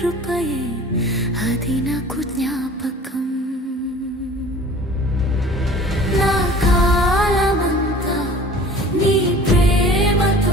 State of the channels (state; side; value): normal; both; correlation 0.44